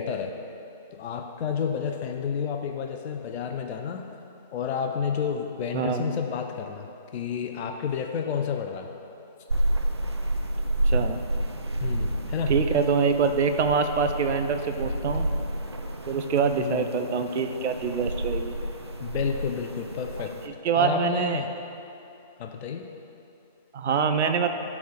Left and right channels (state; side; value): inverted; both; correlation -0.37